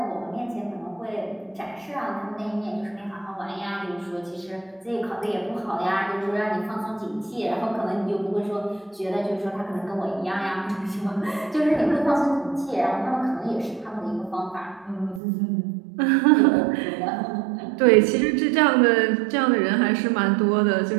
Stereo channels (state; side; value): drops out; left; at 15.2 s